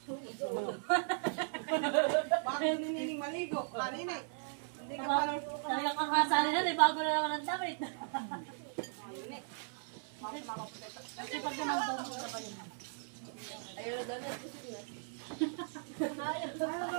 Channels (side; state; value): left; silent; 53 dB below the other